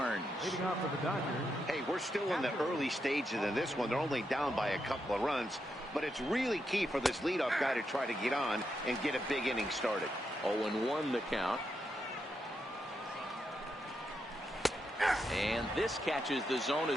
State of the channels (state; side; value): normal; both; correlation 0.83